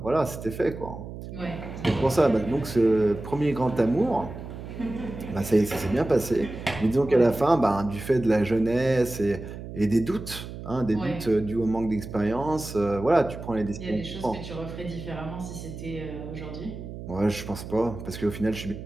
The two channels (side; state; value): right; noise; hum, 10 dB below the sound